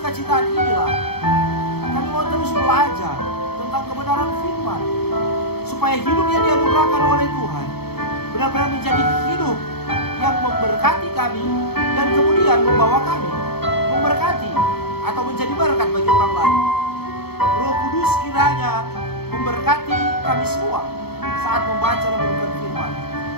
inilah kami mau terus belajar tentang kebenaran firman, supaya hidup yang dianugerahkan oleh Tuhan benar-benar menjadi hidup yang memberkati kami dan kemudian membawa kami memberkati atau menjadi berkat bagi orang lain. Roh Kudus kiranya memberkati kami semua saat membaca dan merenungkan firman.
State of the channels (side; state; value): right; late; 0.96 ms